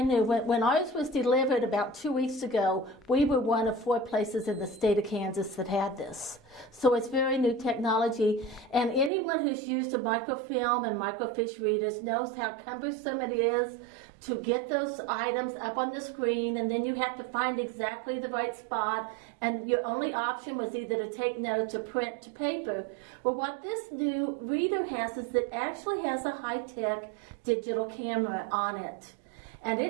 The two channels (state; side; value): drops out; left; at 9.1 s